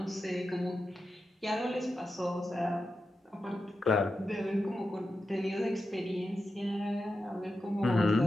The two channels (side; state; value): both; normal; correlation 0.90